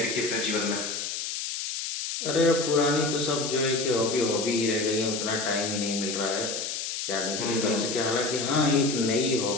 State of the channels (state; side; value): noise; left; hiss, 4 dB below the sound